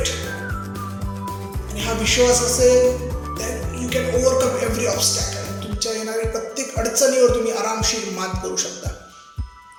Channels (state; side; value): identical; both; correlation 1.00